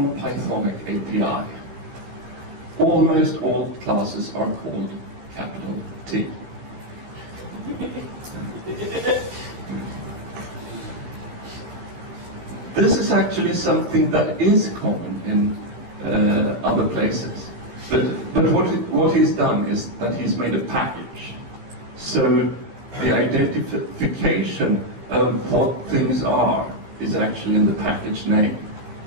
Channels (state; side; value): late; left; 15 ms